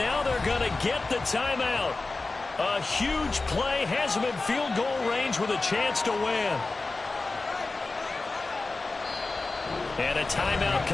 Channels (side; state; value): right; quieter; 3.5 dB